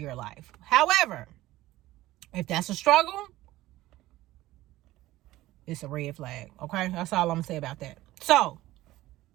life. However, if that's a struggle, it's a red flag, okay? That's all I'm going to say about that. So,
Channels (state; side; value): quieter; left; 16.6 dB